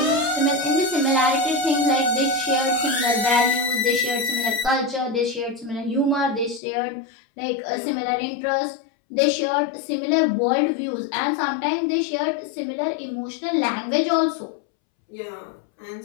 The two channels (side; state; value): right; drops out; at 6.6 s